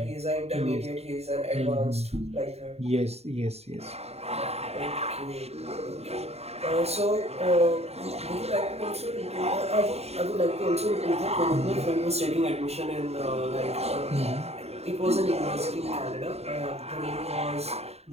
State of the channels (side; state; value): left; late; 0.30 ms